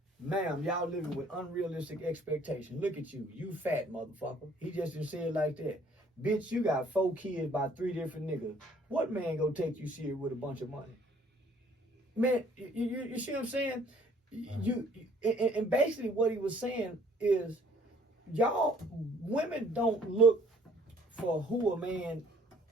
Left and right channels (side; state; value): both; normal; correlation 0.58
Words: Ma'am, y'all living with unrealistic expectations. Look at you. You fat motherfucker. He just didn't say it like that. Bitch, you got 4 kids by 3 different niggas. What man gonna take you serious with a bunch of money? Man, you see what I'm saying? And basically what he was saying is, y'all, women don't look for who a man